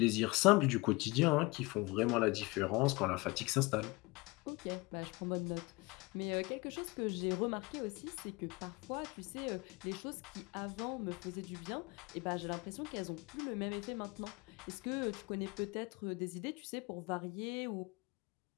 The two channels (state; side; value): quieter; right; 24.4 dB